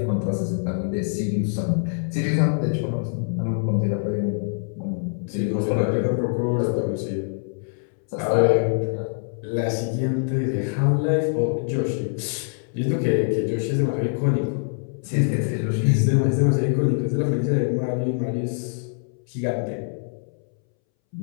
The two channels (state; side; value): silent; right; 63 dB below the other